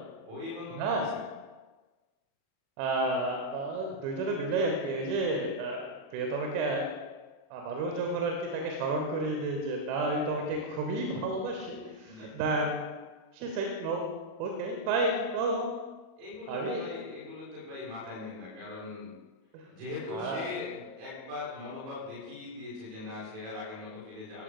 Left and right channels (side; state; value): left; late; 37 ms